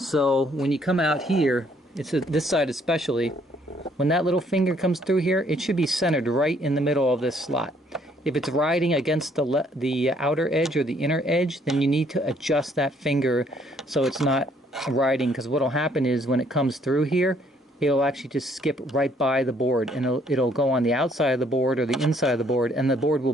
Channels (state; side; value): normal; both; correlation 0.65